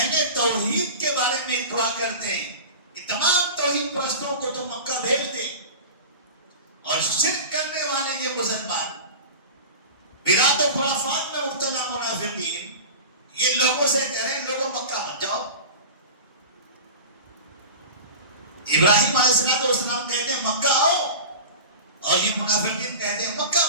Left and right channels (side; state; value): both; inverted; correlation -0.32